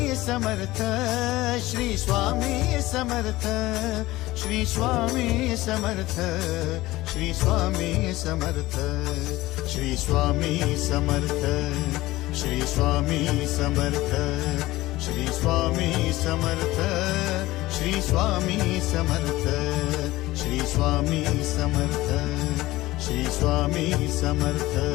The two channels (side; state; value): right; quieter; 18.1 dB